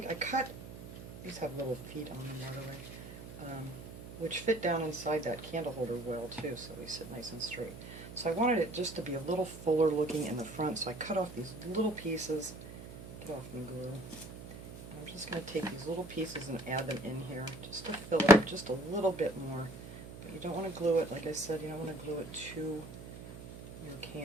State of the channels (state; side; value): noise; right; hum, 13 dB below the sound